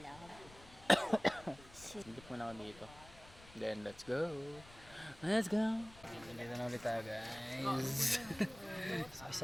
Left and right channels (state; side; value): noise; left; rumble, 20 dB below the sound